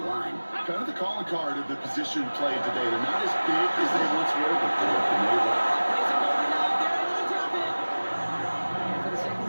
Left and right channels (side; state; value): both; inverted; correlation -1.00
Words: line. Kind of the calling card of the position played today. They're not as big as they once were, but boy, can they run.